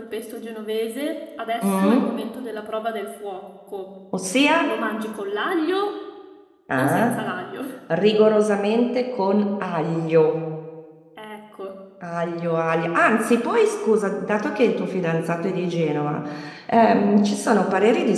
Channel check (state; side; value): identical; both; correlation 1.00